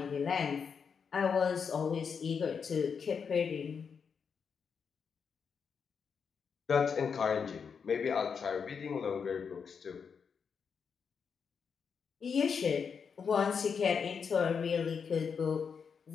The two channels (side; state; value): right; quieter; 6.3 dB